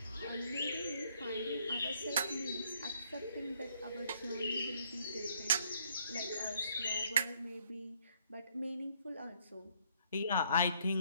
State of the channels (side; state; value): both; inverted; correlation -0.68